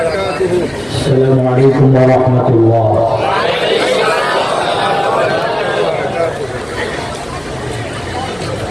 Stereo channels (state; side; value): noise; right; hum, 26 dB below the sound